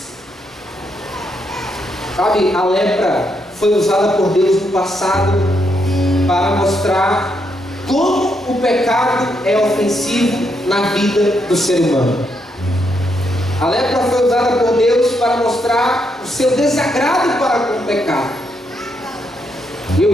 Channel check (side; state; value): both; normal; correlation 0.78